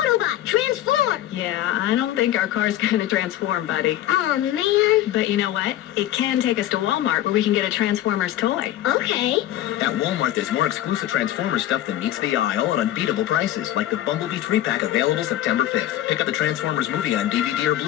transform! Yeah, I don't think our car's going to transform, buddy. Oh, man. But you know what? It can take us to Walmart where we can get a Transformers toy. Okay. At Walmart, there's more exclusive Transformers stuff than meets the aisle at unbeatable prices, like the Bumblebee 3-pack available September 5th. Pick up the Transformers movie on DVD or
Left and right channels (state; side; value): quieter; right; 13.2 dB